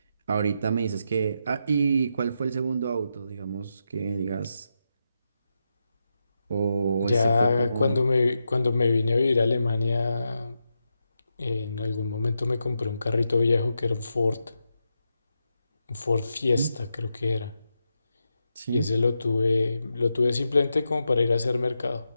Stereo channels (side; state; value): both; inverted; correlation -0.86